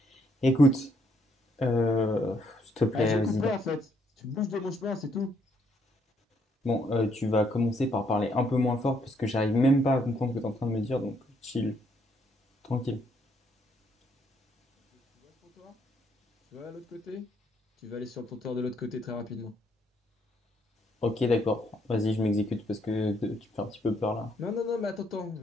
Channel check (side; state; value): both; normal; correlation 0.71